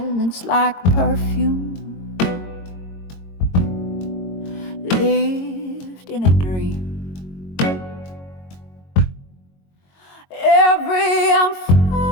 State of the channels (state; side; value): late; right; 22 ms